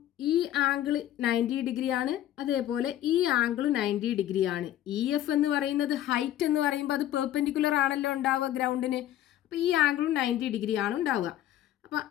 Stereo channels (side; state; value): right; quieter; 12.5 dB